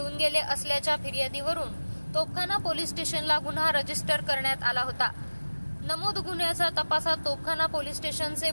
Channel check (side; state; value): both; inverted; correlation -1.00